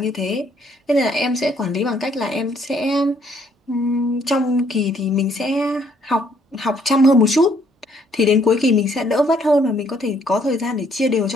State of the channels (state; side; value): normal; both; correlation 0.66